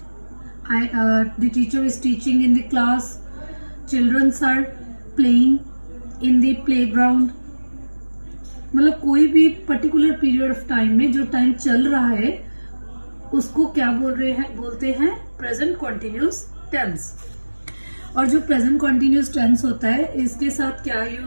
the teacher is teaching in the class, childrens are playing in the playground, मतलब कोई भी पर्टिकुलर पीरियड ऑफ टाइम में जो टाइम चल रहा है उसको क्या बोलते हैं प्रेजेंट कॉन्टिन्यूस टेंस। और जो प्रेजेंट कॉन्टिन्यूस टेंस होता है इसके साथ क्या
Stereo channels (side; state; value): both; inverted; correlation -1.00